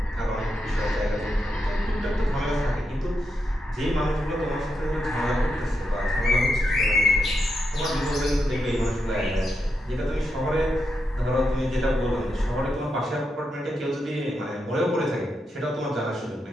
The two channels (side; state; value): both; normal; correlation 0.85